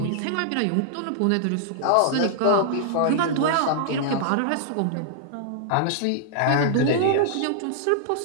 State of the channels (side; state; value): both; different; correlation -0.01